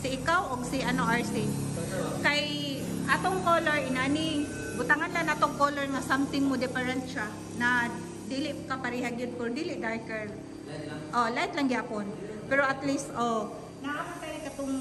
ikaw o si ano RC. Kay atong color inani butangan lang natong color nga something mo different siya na dili ka pareha gyud for dili darker. Oh, light lang gyapon. Pero at least naapay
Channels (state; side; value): identical; both; correlation 1.00